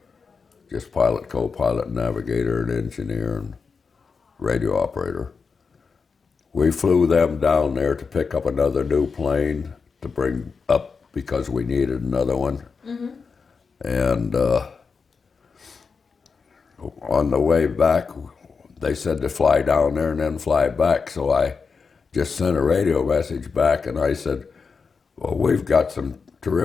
just pilot, co-pilot, navigator, and engineer, and radio operator. We flew them down there to pick up another new plane to bring up because we needed another one. Mm-hmm. And on the way back, they said to fly down there and then fly back. So I just sent a radio message back, and I said, well, we've got some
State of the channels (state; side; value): quieter; right; 5.2 dB